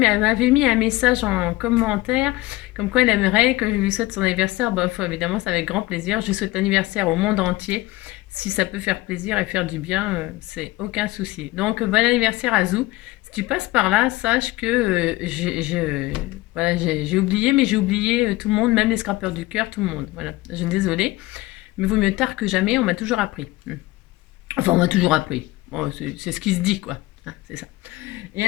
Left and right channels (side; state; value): right; quieter; 19.3 dB